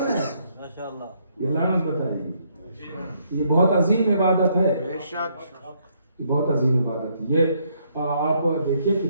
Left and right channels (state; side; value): inverted; both; correlation -0.71